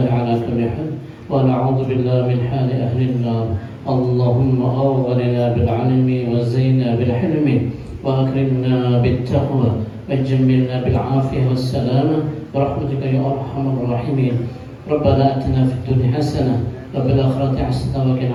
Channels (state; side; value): identical; both; correlation 1.00